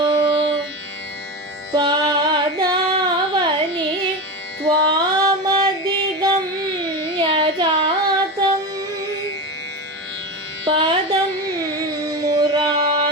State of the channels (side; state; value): both; normal; correlation 0.21